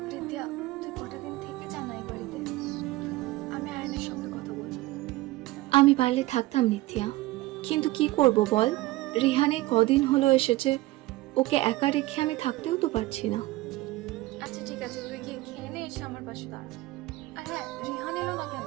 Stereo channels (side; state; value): left; quieter; 18.5 dB